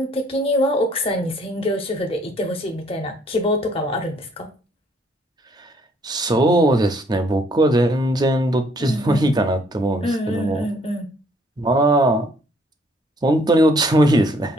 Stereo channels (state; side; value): normal; both; correlation 0.64